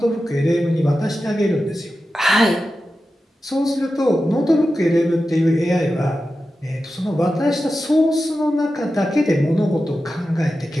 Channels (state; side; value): normal; both; correlation 0.92